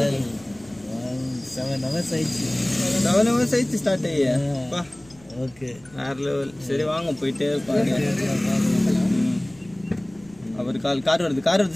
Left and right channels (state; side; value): noise; right; rumble, 26 dB below the sound